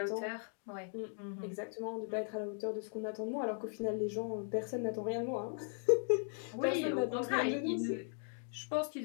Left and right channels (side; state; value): right; silent; 52 dB below the other